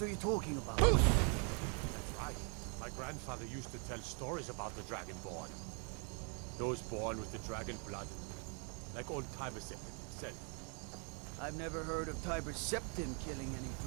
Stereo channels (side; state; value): left; quieter; 37.8 dB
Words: are you talking about? That's right. My grandfather used to tell stories about the Dragonborn. Those born with the dragon blood. Like old Tiber himself. I've never heard of Tiber Septim killing any